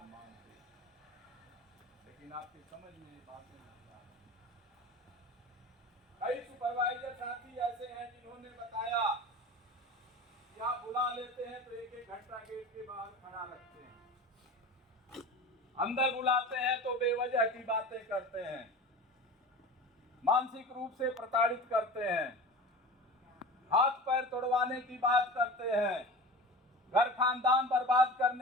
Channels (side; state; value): both; normal; correlation 0.33